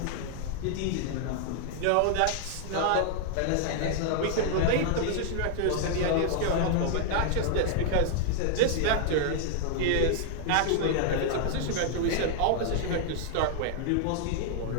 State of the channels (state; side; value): different; both; correlation -0.01